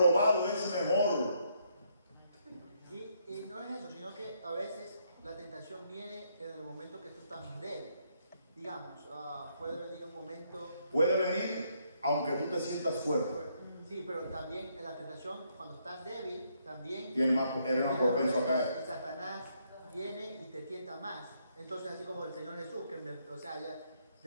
es mejor. Y no es eso, sino que a veces la tentación viene en el momento que tú estás débil. Digamos, puede venir un momento... Puede venir aunque tú te sientas fuerte. Sí, pero también en la tentación, cuando estás débil, también... Eres más propenso a caer. Satanás viene y te tienta más. Entonces, así como el Señor Jesús, que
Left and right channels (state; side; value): inverted; both; correlation -0.73